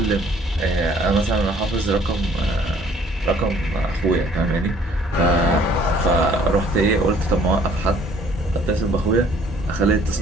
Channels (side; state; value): both; normal; correlation 0.58